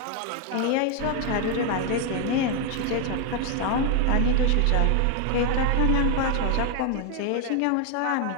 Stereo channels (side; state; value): both; different; correlation 0.01